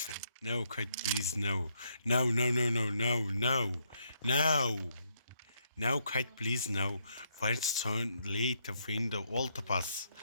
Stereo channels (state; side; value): inverted; both; correlation -0.75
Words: Kite, please, no. No, Kite, please, no. Find son late to find the altar pass.